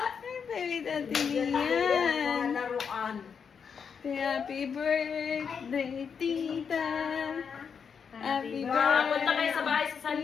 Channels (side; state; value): right; quieter; 6.6 dB